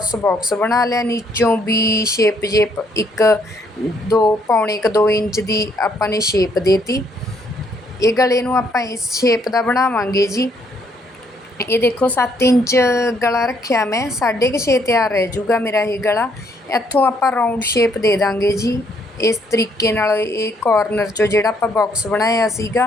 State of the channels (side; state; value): both; normal; correlation 0.69